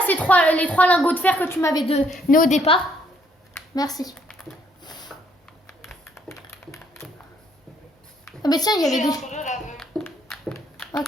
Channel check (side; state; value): both; normal; correlation 0.68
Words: les 3 lingots de fer que tu m'avais donné au départ? Merci. Ah mais tiens, il y avait J'ai des... entre deux là.